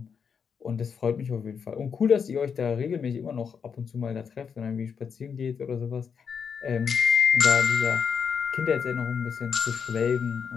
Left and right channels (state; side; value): quieter; right; 6.6 dB